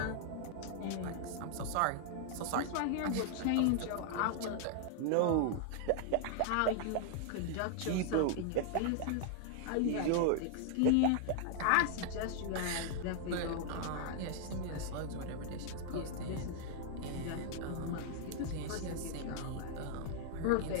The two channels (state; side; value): different; both; correlation 0.00